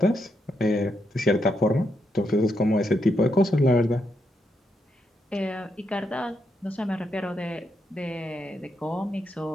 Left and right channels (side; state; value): both; normal; correlation 0.80